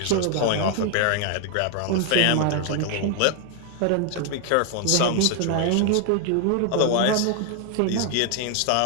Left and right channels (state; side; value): different; both; correlation 0.00